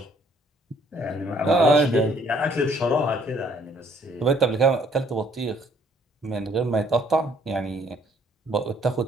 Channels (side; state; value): both; normal; correlation 0.63